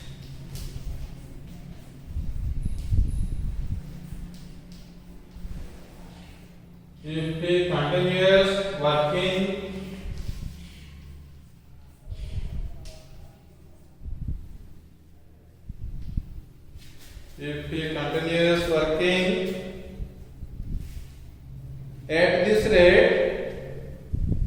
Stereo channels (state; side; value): identical; both; correlation 1.00